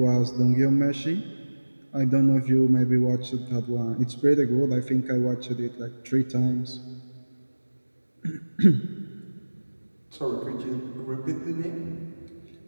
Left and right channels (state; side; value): inverted; both; correlation -1.00